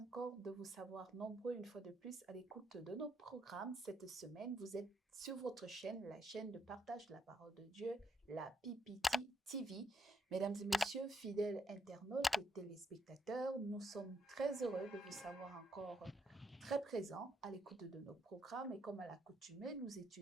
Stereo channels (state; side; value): normal; both; correlation 0.75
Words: de vous savoir nombreux une fois de plus à l'écoute de nos programmes. Cette semaine, vous êtes sur votre chaîne, la chaîne de partage de la parole de Dieu, la PPT TV. Mesdames et messieurs, fidèles internautes et téléspectateurs, nous sommes très heureux de vous savoir encore très présents à l'écoute de nos programmes. Et comme à l'accoutumée, nous